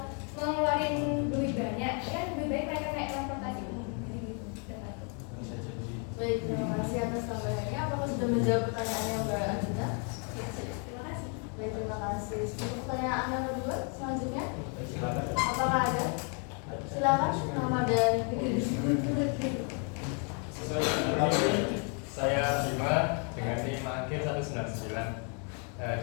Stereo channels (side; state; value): right; quieter; 39.3 dB